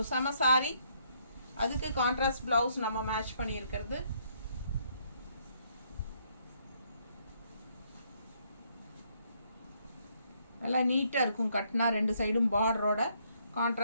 செம சாரி. அதுக்கு கான்ட்ராஸ்ட் ப்ளவுஸ் நம்ம மேட்ச் பண்ணியிருக்கிறது. நல்லா நீட்டாக இருக்கும். கட்டினா 2 சைடும் பார்டரோட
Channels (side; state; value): both; inverted; correlation -0.70